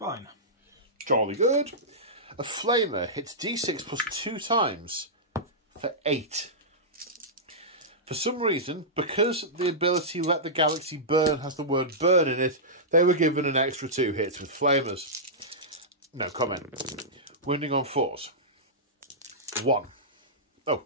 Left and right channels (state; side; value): normal; both; correlation -0.14